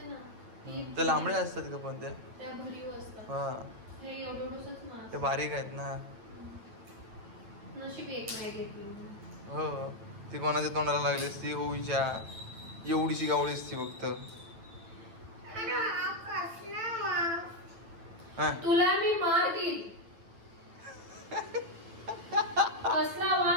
ना ती, ते लांबडे असतात का पण ते? त्या भरीव असतात. हा हे एवढंच मास. ते बारीक आहेत ना. नशीब एक नाही घेतली. हो ती कोणाच्या तोंडाला लागली असती होईच्या एवढीशी गावळी असती फक्त. अरे हा कसला वास. हा तुला मी मार देईल. कसला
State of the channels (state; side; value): late; left; 9.0 ms